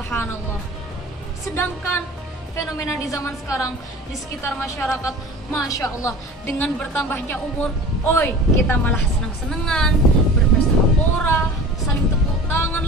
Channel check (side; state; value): both; normal; correlation 0.39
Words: Sedangkan fenomena di zaman sekarang di sekitar masyarakat, Masya Allah, dengan bertambahnya umur, kita malah senang-senangan, berpesta pora, saling tepuk tangan